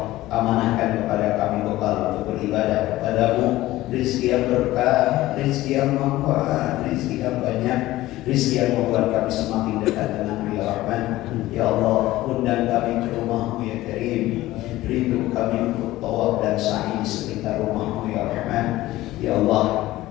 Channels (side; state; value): right; quieter; 16.7 dB